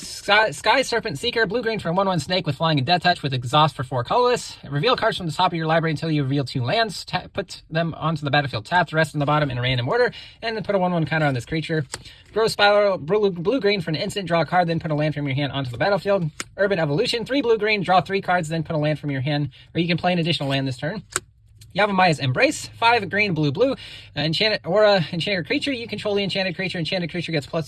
Serpent Seeker, blue-green for a 1/1 snake with flying and death touch with exhaust for 4 colorless. Reveal cards from the top of your library until you reveal 2 lands. Put them onto the battlefield tapped, rest on the bottom in a random order, and then put a 1/1 counter on this creature. Growth Spiral, blue-green for an instant, draw a card, then put a land from your hand onto the battlefield. Urban Evolution, 3 blue-green, draw 3 cards, then put a land from your hand, or you can play an additional land this turn. Yavimai's Embrace, 5 green, blue. Enchanted Aura, enchanted creature. You control the enchanted creature. Enchanted creature gets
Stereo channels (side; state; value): both; identical; correlation 1.00